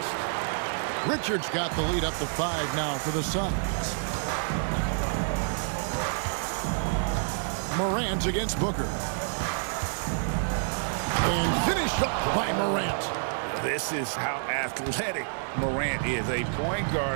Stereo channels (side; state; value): left; silent; digital silence